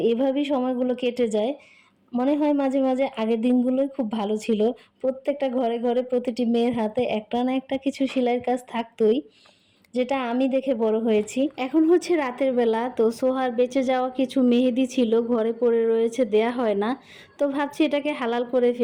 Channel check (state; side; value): identical; both; correlation 1.00